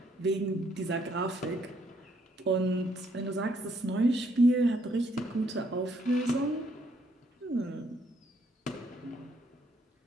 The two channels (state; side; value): normal; both; correlation 0.70